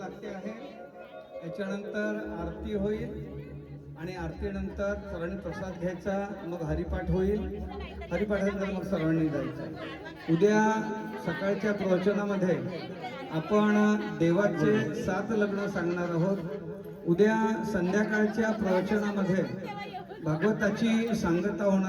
आहे. याच्यानंतर आरती होईल आणि आरतीनंतर सर्वांनी प्रसाद घ्यायचा. मग हरिपाठ होईल. हरिपाठानंतर मग सर्वांनी जायचं. उद्या सकाळच्या प्रवचनामध्ये आपण देवाचे 7 लग्न सांगणार आहोत. उद्या संध्याकाळच्या प्रवचनामध्ये भागवताची सांगता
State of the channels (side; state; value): both; identical; correlation 1.00